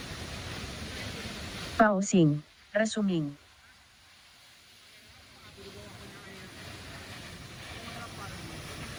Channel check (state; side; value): identical; both; correlation 1.00